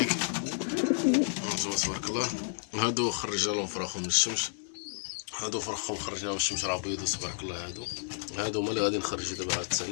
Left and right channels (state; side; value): silent; right; digital silence